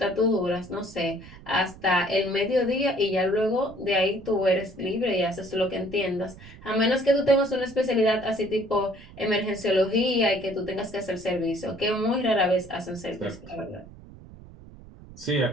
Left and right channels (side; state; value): right; noise; rumble, 19 dB below the sound